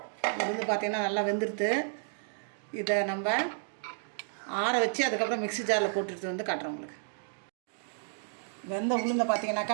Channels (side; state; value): left; silent; digital silence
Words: உளுந்து பார்த்திங்கன்னா நல்லா வெந்துடுது. இதை நம்ம ஆற வச்சு அதுக்கப்புறம் மிக்ஸி ஜாரில் போட்டுட்டு வந்து காட்டுறோம் உங்களுக்கு. வெந்த உளுந்தை